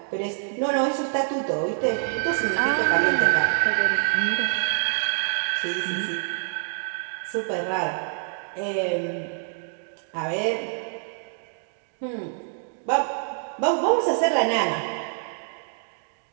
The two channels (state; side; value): silent; left; 61 dB below the other